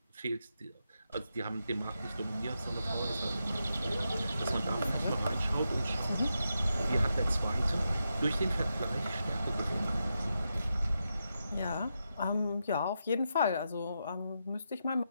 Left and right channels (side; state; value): both; inverted; correlation -0.86